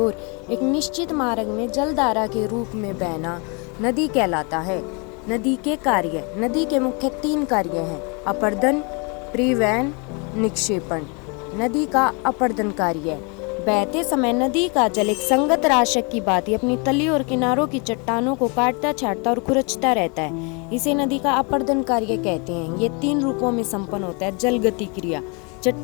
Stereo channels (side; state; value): right; quieter; 33.0 dB